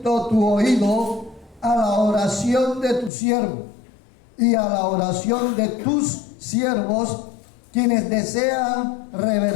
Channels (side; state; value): right; drops out; at 3.1 s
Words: tu oído a la oración de tu siervo y a la oración de tus siervos, quienes desean